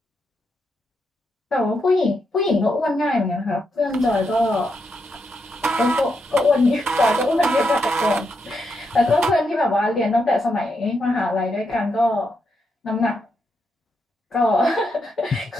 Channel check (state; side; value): normal; both; correlation 0.82